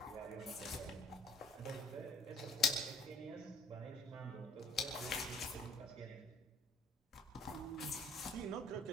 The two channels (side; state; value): both; normal; correlation 0.55